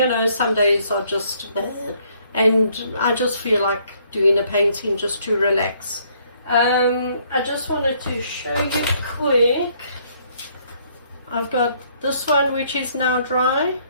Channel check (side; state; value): both; inverted; correlation -0.66